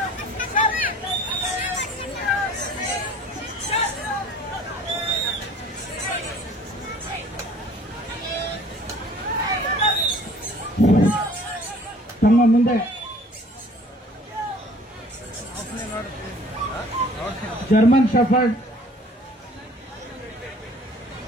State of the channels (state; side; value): normal; both; correlation 0.52